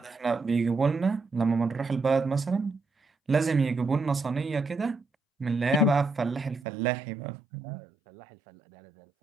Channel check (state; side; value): drops out; left; at 6.6 s